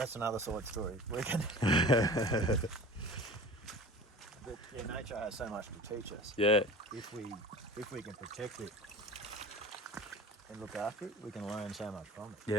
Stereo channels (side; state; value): both; normal; correlation 0.38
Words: another side story. But nature has so much to teach us. Yeah. If we can protect it and look after it, we can learn so much from it.